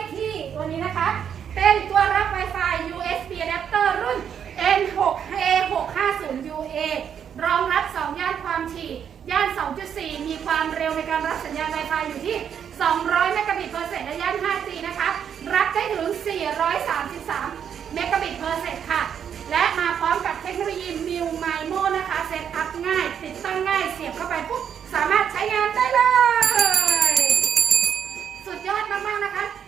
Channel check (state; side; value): quieter; left; 8.3 dB